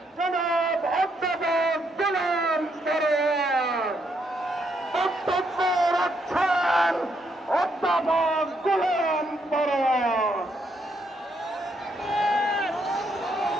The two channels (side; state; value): both; normal; correlation 0.75